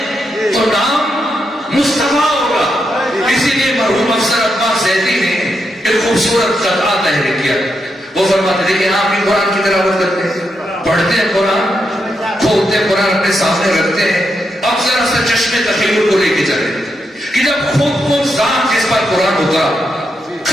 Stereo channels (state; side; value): normal; both; correlation 0.83